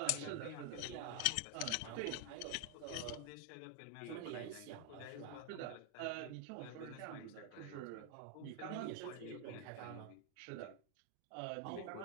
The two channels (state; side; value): different; both; correlation 0.00